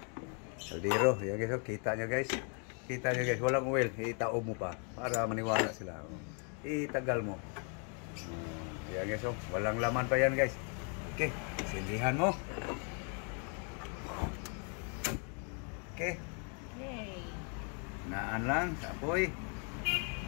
kaldero. Yan guys, kita nyo guys. Kita nyo guys, walang oil. Itao mo pa para maniwala sila. Itagal mo. Yan guys, walang laman pa yan guys. Okay, sindihan mo. Okay. Yay. Naan lang sa apoy.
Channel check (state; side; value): quieter; right; 39.6 dB